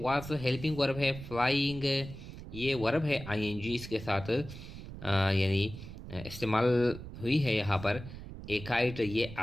हेल्पिंग वर्ब है, फ्लाइंग ये वर्ब है आईएनजी इसके साथ यानी इस्तेमाल हुई है यहाँ पर। ए काइट ये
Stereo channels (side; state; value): right; noise; rumble, 12 dB below the sound